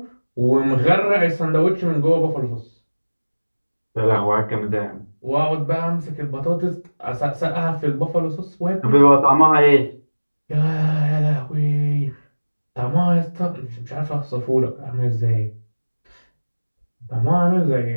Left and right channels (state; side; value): inverted; both; correlation -1.00